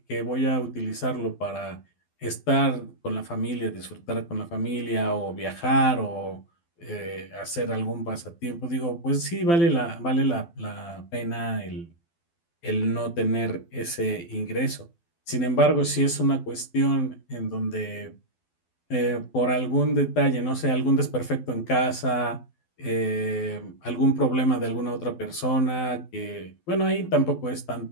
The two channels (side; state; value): right; late; 12 ms